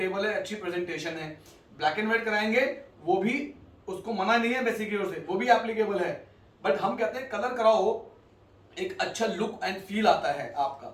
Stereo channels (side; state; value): both; identical; correlation 1.00